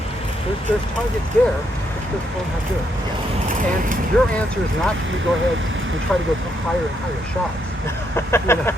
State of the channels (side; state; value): both; normal; correlation 0.76